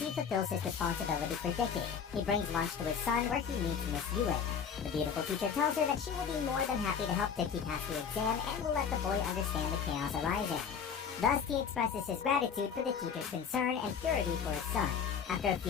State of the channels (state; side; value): quieter; right; 7.0 dB